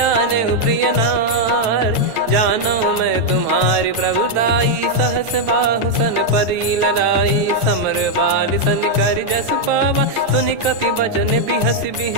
प्रिय नार जानो मैं तुम्हारी प्रभुताई सहस बाहु सन परी लड़ाई समर बाल सन कर जस पावा सुनि कपि भजन बिहस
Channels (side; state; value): left; late; 9.1 ms